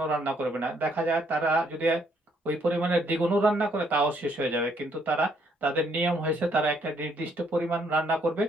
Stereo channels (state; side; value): normal; both; correlation 0.69